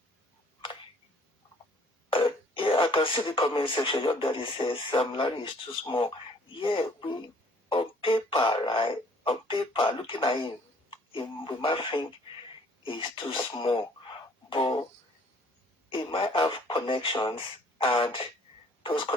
Yeah, I can see the comment section. Your daddy says Sam Larry is too small. Yeah, we on paper, right? On paper, looking at him, we might think he's too small, but he might have connections, and those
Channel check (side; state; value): both; normal; correlation 0.58